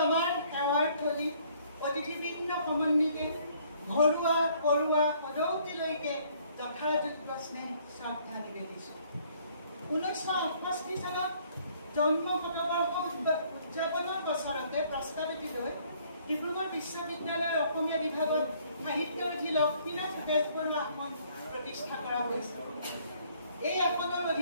আমাৰ সেৱাৰ থলী অতিথিবৃন্দ সমন্বিতে ঘৰুৱা পৰুৱা সদৌতিলৈকে যথাযোগ্য স্নেহ শ্ৰদ্ধা নিবেদিছোঁ। 1968 চনত জন্ম শতবৰ্ষ উদযাপনৰ বছৰতে প্ৰস্তাৱিত লৈ ডিব্ৰুগড় বিশ্ববিদ্যালয়ৰ অসমীয়া বিভাগত সাহিত্যৰথী লক্ষ্মীনাথ বেজবৰুৱা আসন প্ৰতিষ্ঠা কৰা হৈছিল। এই আসনৰ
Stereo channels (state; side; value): inverted; both; correlation -0.62